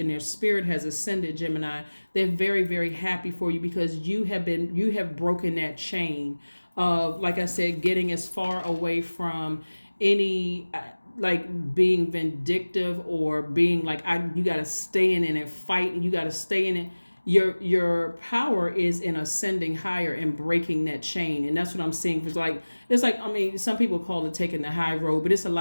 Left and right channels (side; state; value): both; inverted; correlation -1.00